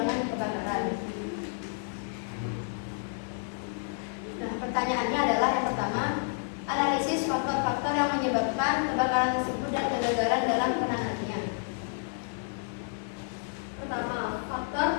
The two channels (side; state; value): right; silent; digital silence